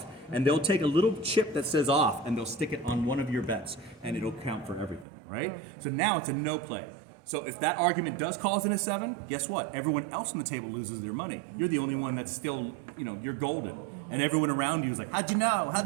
And they'll take a little chip that says off and they'll stick it on one of your bets and it'll count for everything, right? Okay. So now it's a no play. So if that argument does cause in a 7, guess what? Everyone else on the table loses their money. You're the only one that's still, you're golden. And everyone around you is like, how'd you know?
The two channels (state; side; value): drops out; left; at 5.1 s